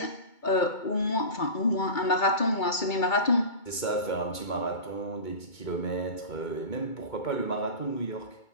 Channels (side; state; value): right; late; 2.3 ms